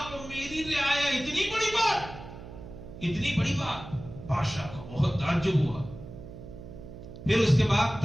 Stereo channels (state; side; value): noise; right; hum, 14 dB below the sound